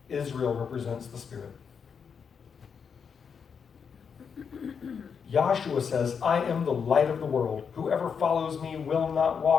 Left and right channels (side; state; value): right; quieter; 6.5 dB